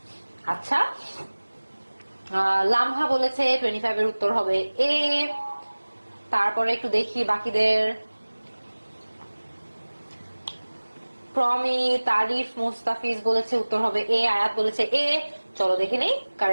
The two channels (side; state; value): both; inverted; correlation -1.00